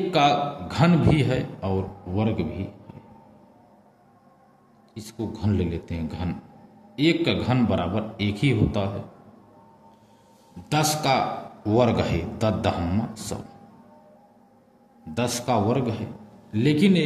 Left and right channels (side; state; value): both; identical; correlation 1.00